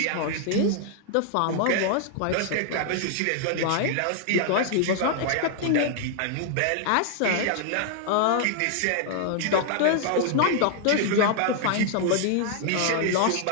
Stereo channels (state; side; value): different; both; correlation 0.00